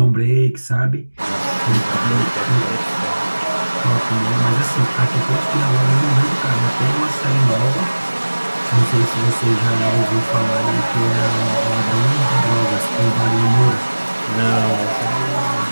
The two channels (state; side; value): inverted; both; correlation -1.00